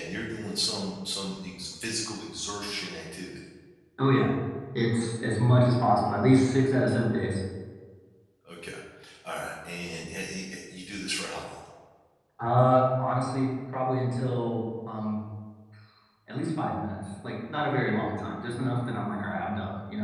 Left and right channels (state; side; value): identical; both; correlation 1.00